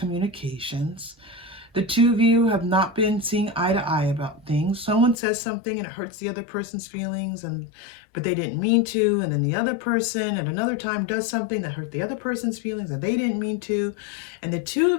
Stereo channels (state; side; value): drops out; right; at 5.2 s